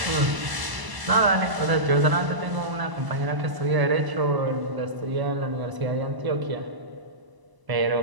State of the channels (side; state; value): left; late; 1.0 ms